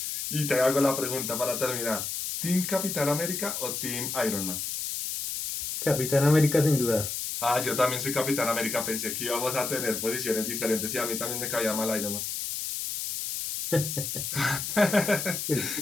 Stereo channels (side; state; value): left; noise; hiss, 4 dB below the sound